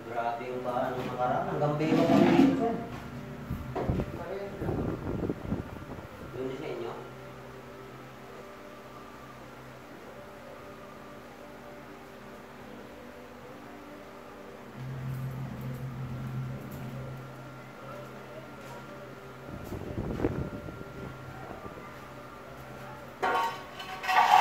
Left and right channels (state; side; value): identical; both; correlation 1.00